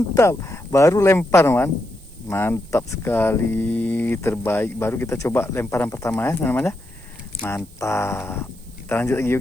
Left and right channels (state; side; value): noise; right; hiss, 25 dB below the sound